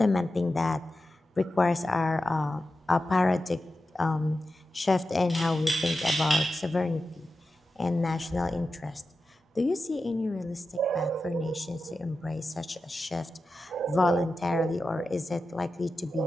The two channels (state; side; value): normal; both; correlation 0.92